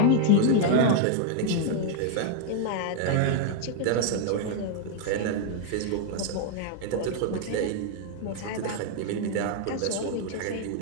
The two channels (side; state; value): both; different; correlation 0.00